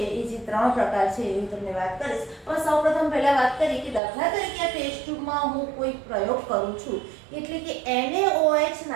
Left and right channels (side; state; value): left; drops out; at 4.0 s